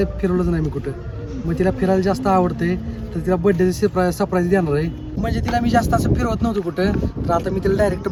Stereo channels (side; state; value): both; identical; correlation 1.00